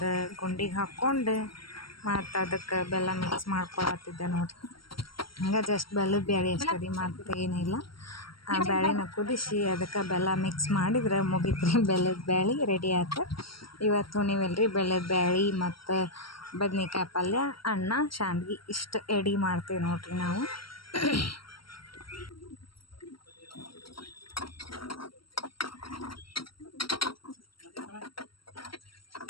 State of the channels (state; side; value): late; right; 0.74 ms